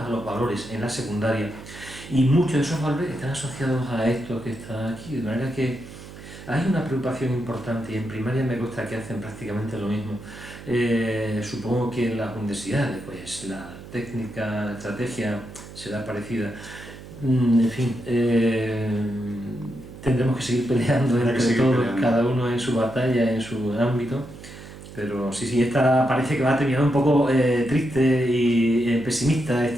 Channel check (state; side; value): noise; right; hum, 15 dB below the sound